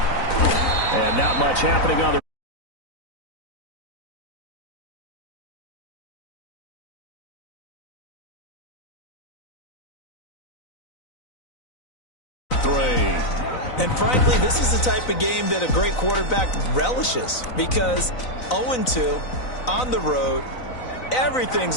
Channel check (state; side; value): late; right; 4.0 ms